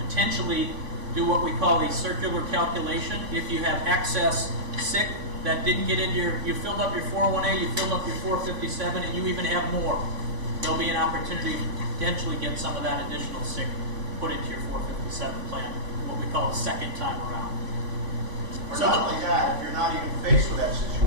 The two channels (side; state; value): left; late; 3.6 ms